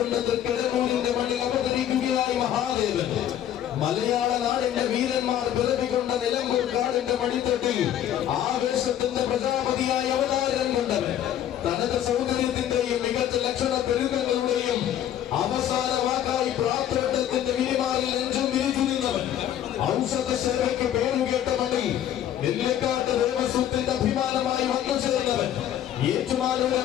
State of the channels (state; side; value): quieter; right; 11.0 dB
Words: തൃക്കടങ്ങൂരിന്റെ മണ്ണിൽ അവതരിക്കുകയായി മഹാദേവൻ. മലയാള നാടിന്റെ വീരന്മാർ പിറവികൊണ്ട നിലമ്പൂർ കാടിന്റെ മടിത്തട്ടിൽ ആവേശത്തിന്റെ പ്രജാപതിയായി അവതാരം കൊണ്ടവൻ. തനത് സൗന്ദര്യത്തിന്റെയും മികച്ച ലക്ഷണ പെരുകങ്ങളുടെയും അവസാന വാക്കായി പ്രാർത്ഥനത്തിന്റെ വിരിമാറിൽ നെഞ്ചും വിരിച്ചിരുന്നവൻ. ഔഷധ സേവയ്ക്ക് പേരുകേട്ട മണ്ണിൽ നെല്ലിക്കാട്ട് ദേവസ്വത്തിന്റെ അഭിമാനമായി വന്നു ചേർന്നവൻ.